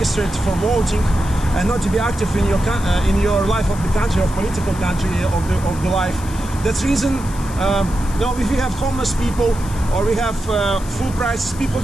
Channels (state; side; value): noise; left; hiss, 17 dB below the sound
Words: for voting and not to be active in your life of the country, of political country, of the life. That's reason if we have homeless people or we have full prices, people